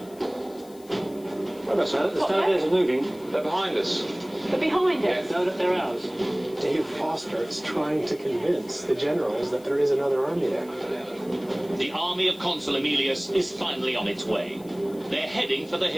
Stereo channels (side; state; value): left; noise; hiss, 24 dB below the sound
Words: The Stone are moving. They're behind us. They're behind us. No, they're ours. Dave Foster is trying to convince the generals that there is another army there. The army of Consul Aemilius is finally on its way. They're heading for the